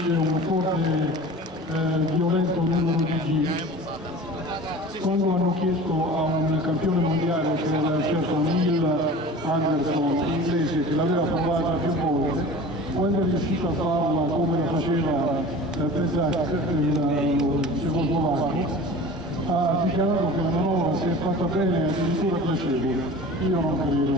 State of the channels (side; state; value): both; normal; correlation 0.38